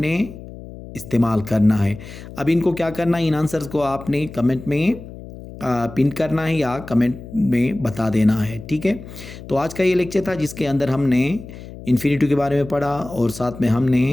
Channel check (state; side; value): noise; left; hum, 14 dB below the sound